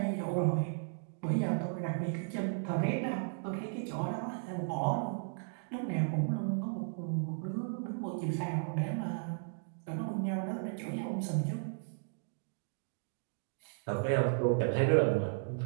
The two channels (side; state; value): left; silent; digital silence